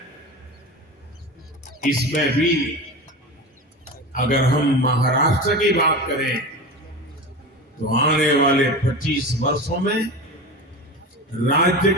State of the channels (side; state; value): both; normal; correlation 0.28